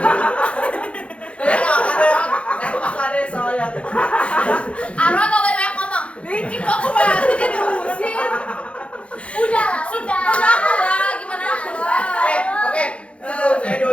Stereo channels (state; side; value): late; right; 0.061 ms